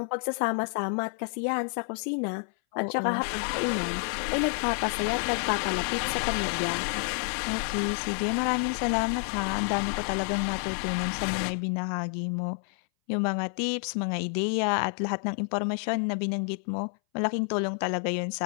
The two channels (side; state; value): right; silent; 59 dB below the other